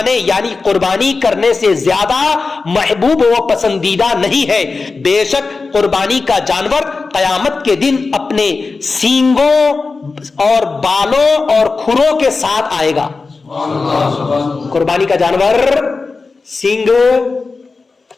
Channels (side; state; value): right; quieter; 4.1 dB